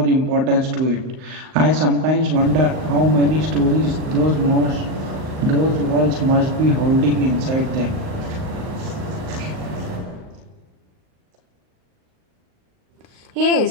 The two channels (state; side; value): late; left; 38 ms